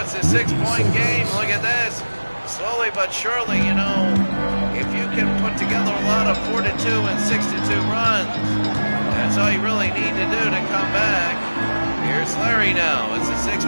a 6-point game. Look at this. Slowly but surely, you know, if you can put together a lot of 4-2 and 6-2 runs, that's all you really need to do to come back. Here's Larry now. It's a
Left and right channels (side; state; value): both; inverted; correlation -1.00